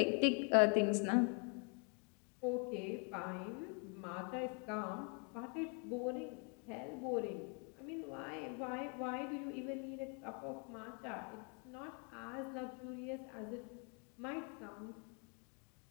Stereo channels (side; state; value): right; quieter; 37.7 dB